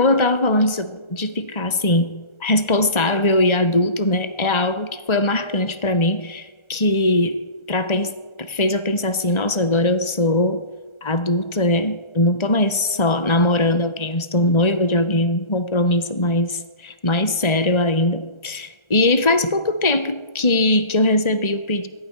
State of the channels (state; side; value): late; right; 1.4 ms